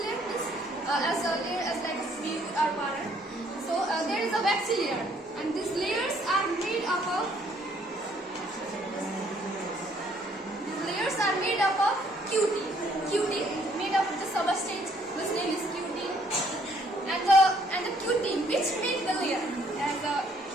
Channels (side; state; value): both; normal; correlation 0.65